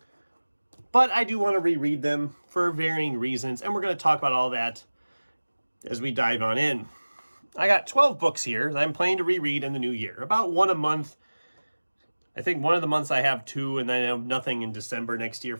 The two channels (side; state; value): both; inverted; correlation -1.00